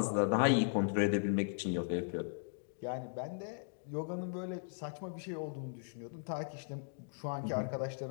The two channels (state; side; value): silent; right; digital silence